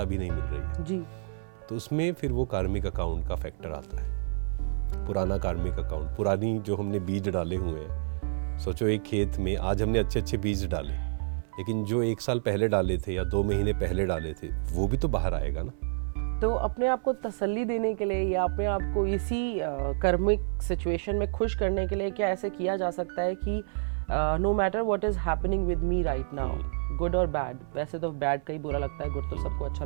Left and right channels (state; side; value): silent; left; 59 dB below the other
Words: भी नहीं मिल रही है जी। तो उसमें फिर वो कार्मिक अकाउंट का फैक्टर आता है, पुराना कार्मिक अकाउंट, पुरानी जो हमने बीज डाले हुए हैं। सोचो एक खेत में आज हमने अच्छे अच्छे बीज डाले, लेकिन जो 1 साल पहले डाले थे या 2 महीने पहले डाले थे, वो भी तो बाहर आएगा ना। तो अपने आप को तसल्ली देने के लिए, या अपने आप को इसी कर्मिक सिचुएशन में खुश करने के लिए क्या ऐसे किया जा सकता है कि no matter what is happening with me right now, good और बैड, वैसे तो बैड का ही बुरा लगता है, गुड तो सबको अच्छा